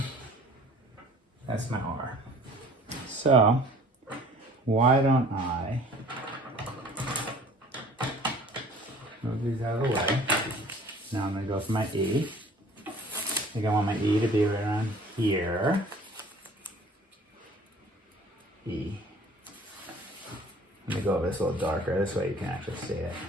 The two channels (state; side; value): normal; both; correlation 0.50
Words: That's my R. So, why don't I move these out of the way? Now I'm gonna go for my E. I think I want my E to be right around here. E. Let me go over this a little darker, this way you can actually see it.